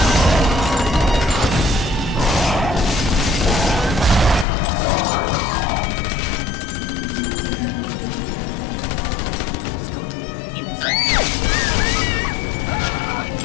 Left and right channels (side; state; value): right; drops out; at 4.5 s